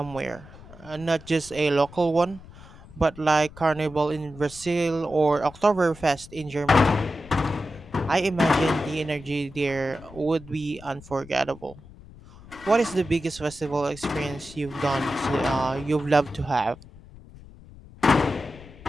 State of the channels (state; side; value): noise; left; rumble, 19 dB below the sound